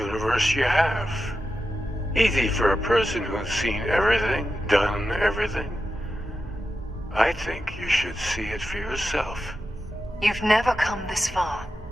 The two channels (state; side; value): normal; both; correlation 0.89